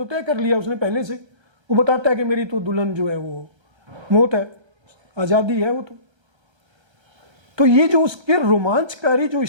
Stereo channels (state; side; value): late; left; 1.3 ms